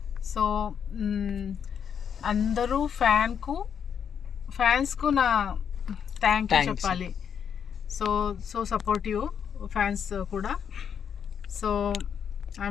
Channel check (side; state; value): right; quieter; 7.7 dB